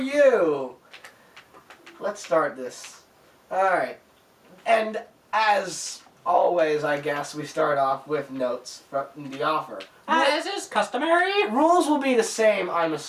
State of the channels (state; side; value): identical; both; correlation 1.00